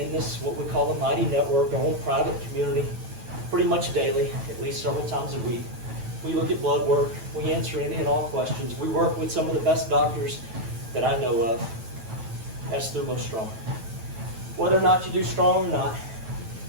this, what we call the Mighty Network, our own private community, pretty much daily, at least several times a week. We look at blood work. We answer any and all questions. We work with some of the best doctors that I know of. That's Thumo Strong. Whether or not you do strong or not,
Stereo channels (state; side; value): late; left; 9.1 ms